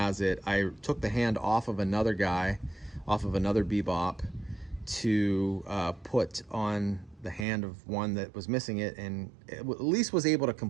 it. I took the hand off of another guy, off of another Bebop, to put on the hand of one that was missing it, and at least was able to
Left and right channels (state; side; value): drops out; left; at 7.5 s